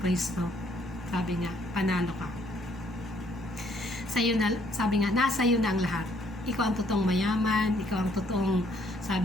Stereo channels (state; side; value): normal; both; correlation 0.66